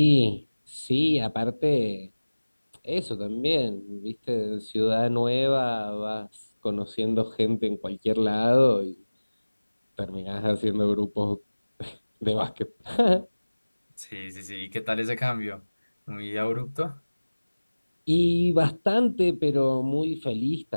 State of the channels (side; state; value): both; inverted; correlation -1.00